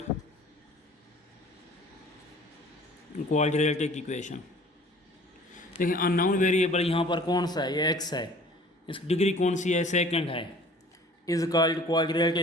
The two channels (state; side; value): normal; both; correlation 0.49